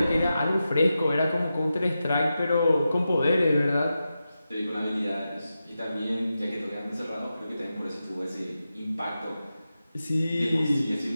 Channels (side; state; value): both; inverted; correlation -0.91